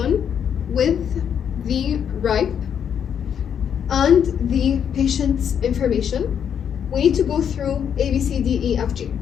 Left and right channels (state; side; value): quieter; right; 8.3 dB